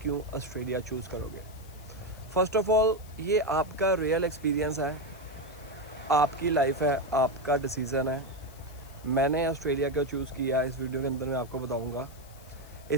ऑस्ट्रेलिया चूज़ करोगे? फ़र्स्ट ऑफ़ ऑल, ये आपका रियल एक्सपीरियंस है, आपकी लाइफ है, आपका डिसीज़न है। मैंने ऑस्ट्रेलिया क्यों चूज़ किया, इस वीडियो के अंदर मैं आपको बताऊंगा।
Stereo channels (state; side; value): noise; left; hiss, 23 dB below the sound